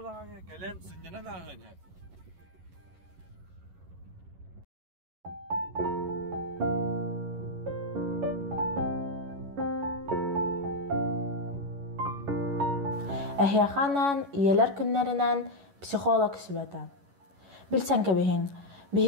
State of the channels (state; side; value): late; left; 11 ms